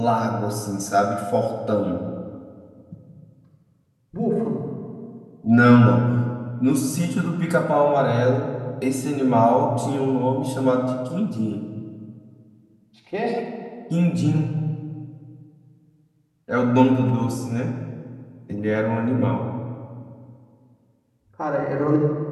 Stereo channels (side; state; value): both; identical; correlation 1.00